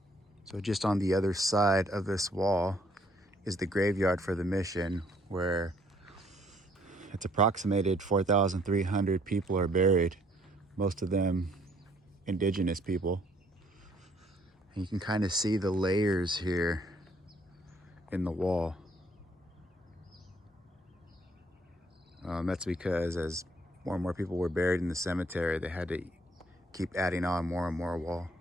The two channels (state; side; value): normal; both; correlation 0.64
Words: So just on the other side of this wall is the graveyard for the mission, where it's approximated 4,300 people are buried, most of them indigenous people. And you can kind of see the layers here in the wall. That's because as more and more people were buried in the cemetery, they had to keep adding on more and more wall.